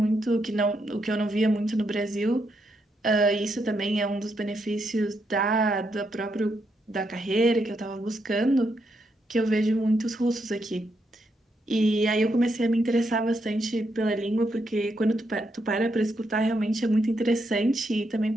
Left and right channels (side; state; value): both; normal; correlation 0.80